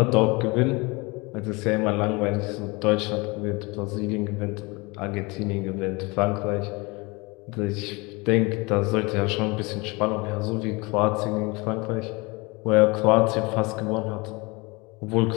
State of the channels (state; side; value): quieter; right; 26.2 dB